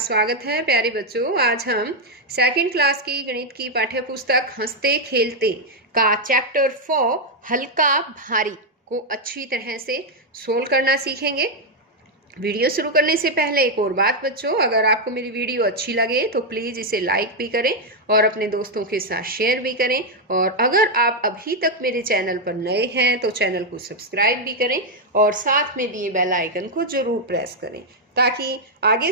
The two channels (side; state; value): both; normal; correlation 0.00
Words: है। प्यारे बच्चों, आज हम सेकंड क्लास की गणित की पाठ्य पुस्तक हंसते खेलते का चैप्टर 4 हल्का भारी को अच्छी तरह से सोल्व करना सीखेंगे। वीडियो शुरू करने से पहले एक और बात बच्चों, अगर आपको मेरी वीडियो अच्छी लगे तो प्लीज़ इसे लाइक भी करें और अपने दोस्तों के साथ शेयर भी करें। और अगर आप अभी तक मेरे चैनल पर नए हैं तो चैनल को सब्सक्राइब भी करें और साथ में दिए बेल आइकन को जरूर प्रेस करें, ताकि आगे